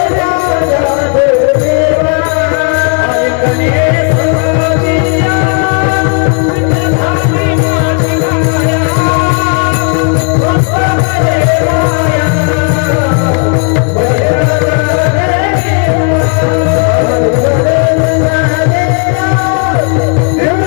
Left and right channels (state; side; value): quieter; right; 38.7 dB